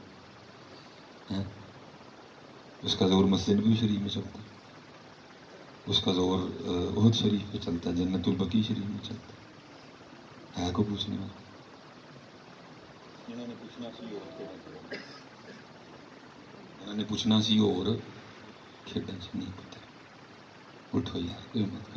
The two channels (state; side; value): identical; both; correlation 1.00